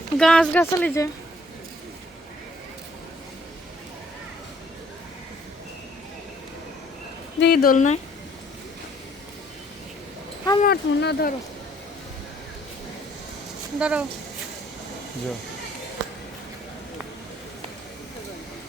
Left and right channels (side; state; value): both; normal; correlation 0.61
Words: গাছ গাছালি যে দেখি দোল নাই আমার না, ধরো ধরো।